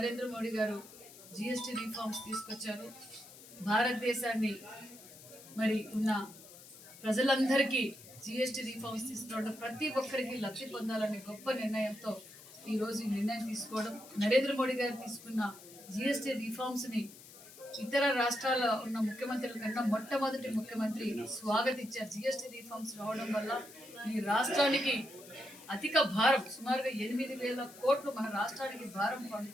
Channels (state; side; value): noise; left; hiss, 18 dB below the sound